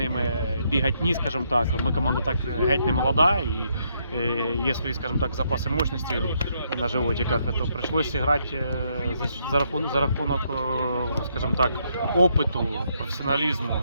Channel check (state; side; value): inverted; both; correlation -0.75